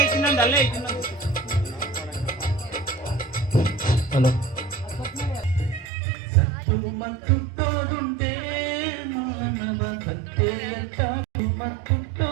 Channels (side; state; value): left; drops out; at 5.9 s